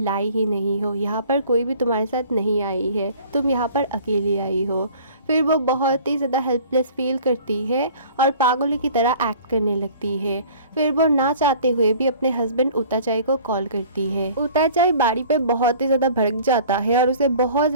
ही नहीं हो, यहाँ पर कोई भी तुम्हारे साथ नहीं आई है, तुम यहाँ पर अकेली आई हो। फिर वो बहुत ही ज़्यादा हेल्पलेस फील करती है और पागलों की तरह एक्ट करने लगती है। फिर वो ना चाहते हुए भी अपने हस्बैंड उताचाई को कॉल करती है। उताचाई बारी पे बहुत ही ज़्यादा भड़क जाता है और उसे बहुत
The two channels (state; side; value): inverted; both; correlation -0.48